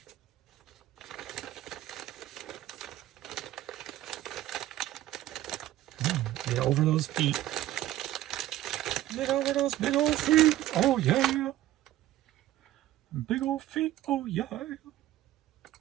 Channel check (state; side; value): quieter; left; 14.1 dB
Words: Get over those feet. Get over those big old feet. Oh, yeah. Big old feet. Oh, yeah.